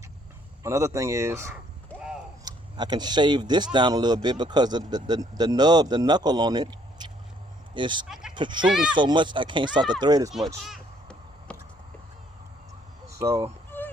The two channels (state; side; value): normal; both; correlation 0.65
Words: Another thing is I can shave this down a little bit because the nub, the knuckle on it is protruding so much I can't start the thread as much. So